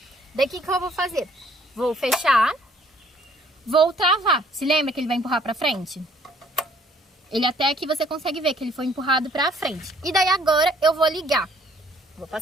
Daqui que eu vou fazer? Vou fechar, vou travar. Se lembra que ele vai empurrar pra frente? Ele até aqui você consegue ver que ele foi empurrado pra frente. E daí agora eu vou ligar. Vou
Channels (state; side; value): normal; both; correlation 0.61